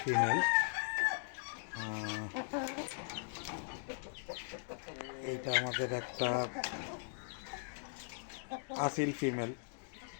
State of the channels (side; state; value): right; silent; digital silence